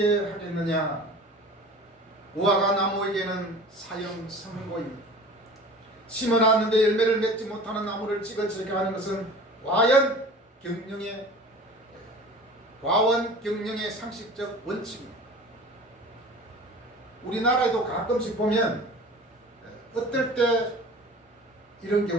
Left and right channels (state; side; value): normal; both; correlation 0.40